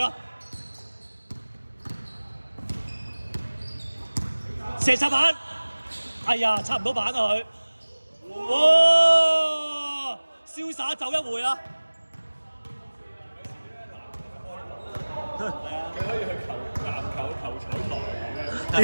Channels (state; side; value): inverted; both; correlation -1.00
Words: 射插板，哎呀，插唔到板啊佢！哇，瀟灑走一回啊！佢可以去籃球球彩台咁樣，